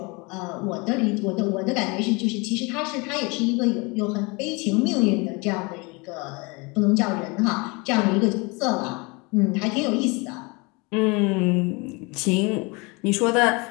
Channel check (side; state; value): right; quieter; 27.8 dB